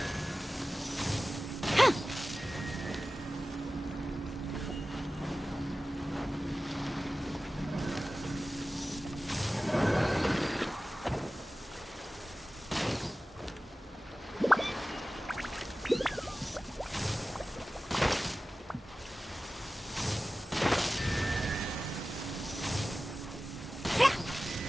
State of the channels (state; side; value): normal; both; correlation 0.96